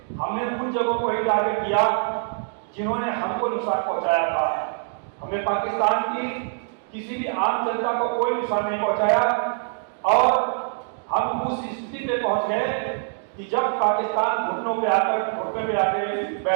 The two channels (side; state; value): left; silent; 58 dB below the other